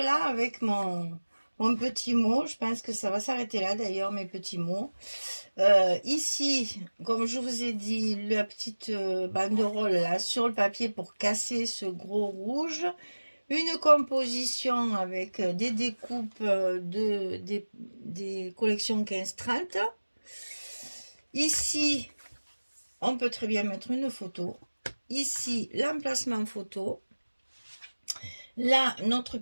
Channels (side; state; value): both; inverted; correlation -1.00